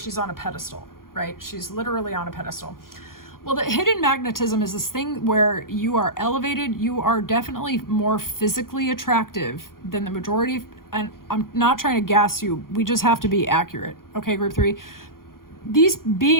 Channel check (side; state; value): right; late; 0.91 ms